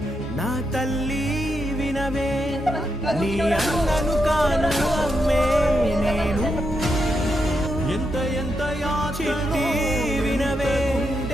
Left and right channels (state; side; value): normal; both; correlation 0.83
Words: నా తల్లి వినవే నీ అన్నను కాను అమ్మే నేను ఎంత ఎంత చిట్టి వినవే